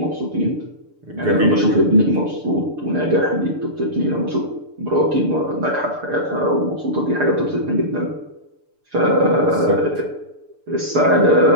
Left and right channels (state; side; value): late; left; 6.8 ms